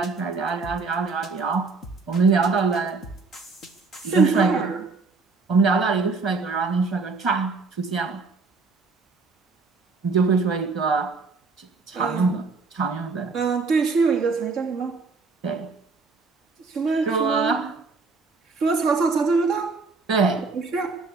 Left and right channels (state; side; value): quieter; left; 4.2 dB